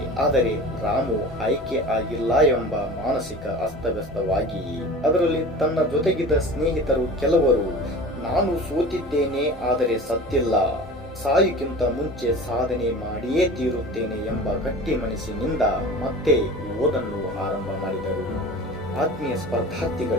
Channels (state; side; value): normal; both; correlation 0.38